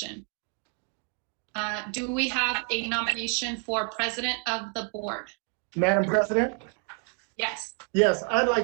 Do we have a nomination for president of the board? Madam President? Yes. Yes, I'd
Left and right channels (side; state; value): left; quieter; 36.1 dB